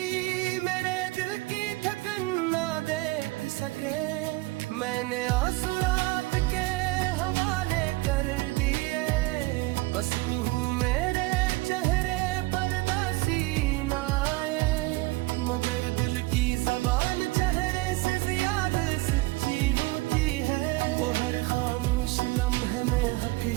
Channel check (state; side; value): quieter; left; 21.4 dB